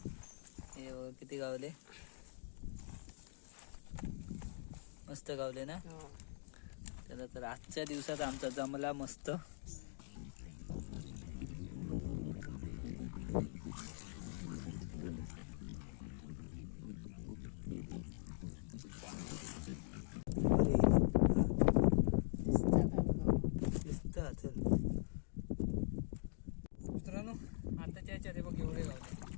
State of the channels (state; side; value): silent; right; digital silence